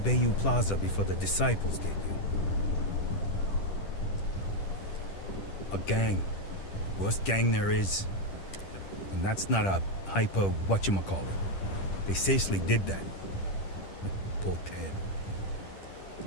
Plaza before the disciples get you. A gang. Worst gang there is. And that's not a hyper whatchamacallit. They seriously did that. Poor Ted.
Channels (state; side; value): late; right; 10 ms